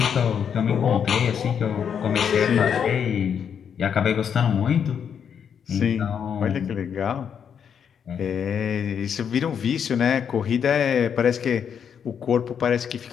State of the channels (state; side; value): quieter; right; 7.7 dB